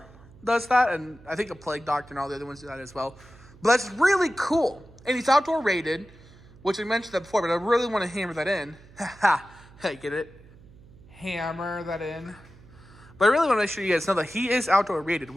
does that, and I think the Plague Doctor and all the other ones do that as well. But that's really cool, and he's outdoor rated, which I mentioned that before, but I really want to hammer that in. Hey, get it? Hammer that in. But I really want to make sure you guys know that he is outdoor rated,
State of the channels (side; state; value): right; noise; hum, 23 dB below the sound